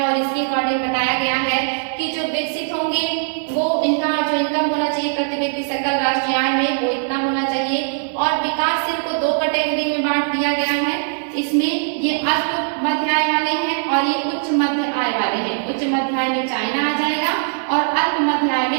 और इसके अकॉर्डिंग बताया गया है कि जो विकसित होंगे वो इनका जो इनकम होना चाहिए प्रति व्यक्ति सकल राष्ट्रीय आय में वो इतना होना चाहिए। और विकासशील को दो कैटेगरी में बांट दिया गया है, इसमें ये अल्प मध्य आय वाले हैं और ये उच्च मध्य आय वाले हैं। उच्च मध्य आय में चाइना आ जाएगा और अल्प मध्य आय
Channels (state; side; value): silent; left; digital silence